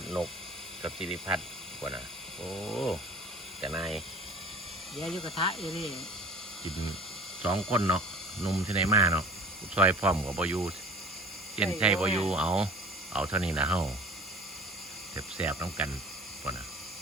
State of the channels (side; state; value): both; normal; correlation 0.43